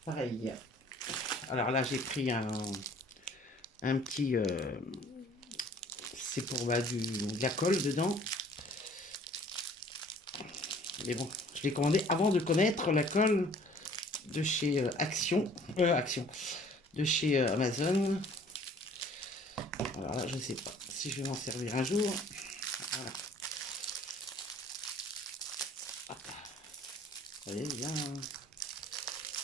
Pareil. Alors là, j'ai pris un petit... c'est pour de la colle dedans. Mais bon, je l'ai commandé avant de connaître la colle de chez Action. De chez Amazon. Alors là, je ne sais pas si je vais m'en servir un jour. Voilà. Ah. Vous voyez bien.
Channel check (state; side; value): normal; both; correlation 0.53